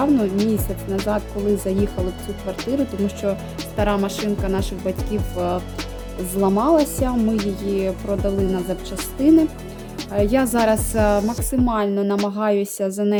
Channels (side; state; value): both; identical; correlation 1.00